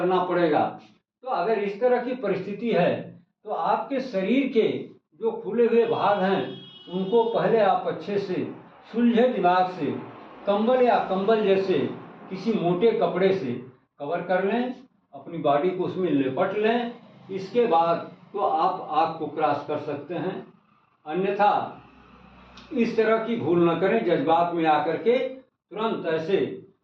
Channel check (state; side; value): identical; both; correlation 1.00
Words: पड़ेगा। तो अगर इस तरह की परिस्थिति है तो आपके शरीर के जो खुले हुए भाग हैं उनको पहले आप अच्छे से सुलझे दिमाग से कंबल या कंबल जैसे किसी मोटे कपड़े से कवर कर लें, अपनी बॉडी को उसमें लिपट लें। इसके बाद तो आप आग को क्रॉस कर सकते हैं। अन्यथा इस तरह की भूल न करें, जज्बात में आकर के तुरंत ऐसे